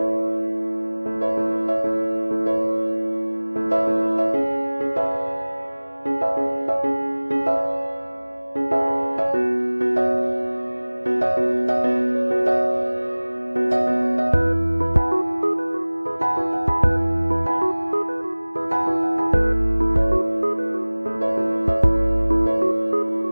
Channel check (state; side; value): inverted; both; correlation -1.00